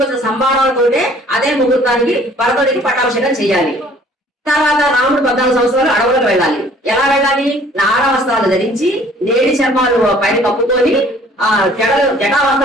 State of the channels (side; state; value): both; normal; correlation 0.55